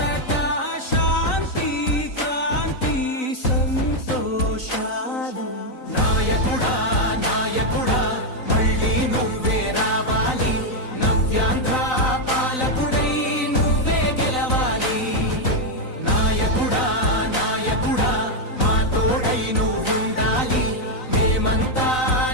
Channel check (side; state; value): right; late; 3.9 ms